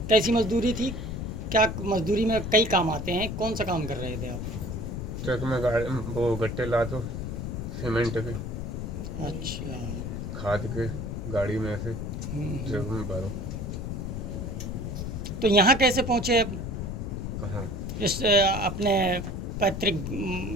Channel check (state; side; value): noise; left; rumble, 4 dB below the sound